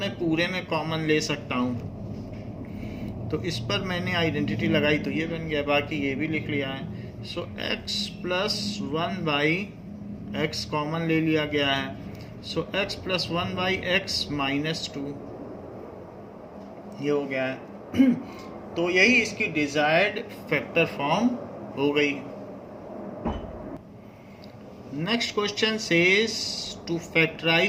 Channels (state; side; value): identical; both; correlation 1.00